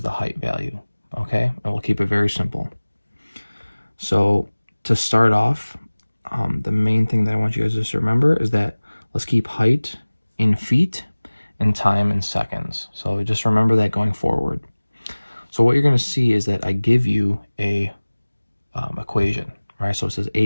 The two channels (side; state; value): both; inverted; correlation -1.00